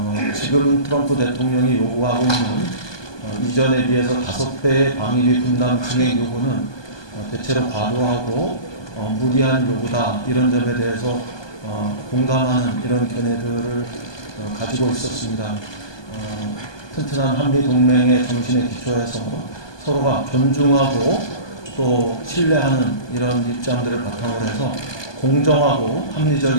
지금 트럼프 대통령이 요구하고 있는 이전에 비해서 5배의 방위비 분담 증액 요구는 대체로 과도하고 무리한 요구다 이런 점에 대해서 공감하는 이런 견해들을 가지고 있었습니다. 튼튼한 한미 동맹의 정신에 기초해서 서로가 존중하고 또 신뢰하는 이런 입장들을 바탕으로 해서 공정하고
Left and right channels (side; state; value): right; late; 1.2 ms